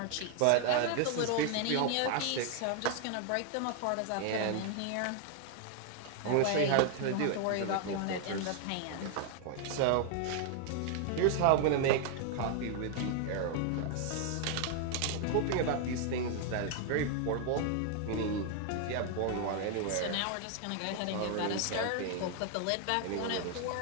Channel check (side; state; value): both; different; correlation 0.00